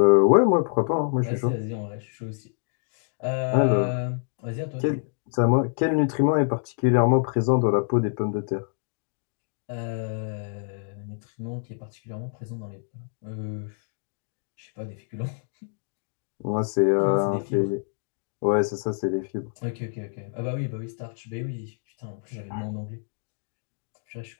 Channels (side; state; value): right; silent; digital silence